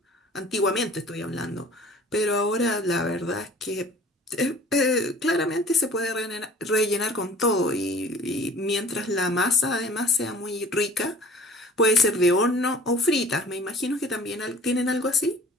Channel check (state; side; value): normal; both; correlation 0.48